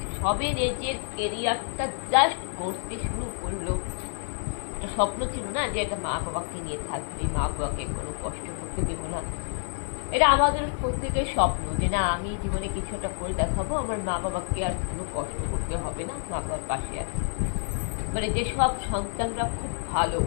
সবে নিজের কেরিয়ারটা জাস্ট করতে শুরু করলো। একটা স্বপ্ন ছিল না যে একটা মা বাবাকে নিয়ে থাকবে, মা বাবাকে কোনো কষ্ট করতে দেবো না। এটা আমাদের প্রত্যেকের স্বপ্ন যে না, আমি জীবনে কিছু একটা করে দেখাবো, আমার মা বাবাকে আর কোনো কষ্ট করতে হবে না, মা বাবার পাশে আছে। যেসব সন্তানরা খুব ভালো,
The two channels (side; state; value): right; silent; 59 dB below the other